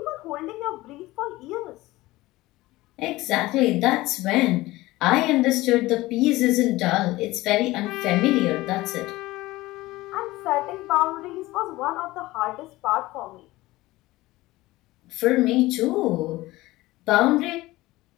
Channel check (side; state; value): right; quieter; 18.7 dB